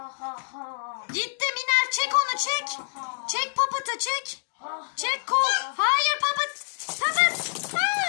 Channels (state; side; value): silent; right; digital silence